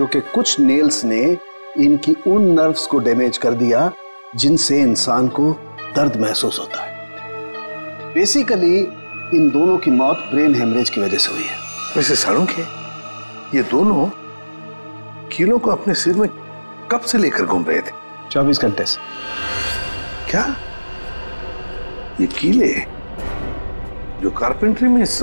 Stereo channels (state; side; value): inverted; both; correlation -1.00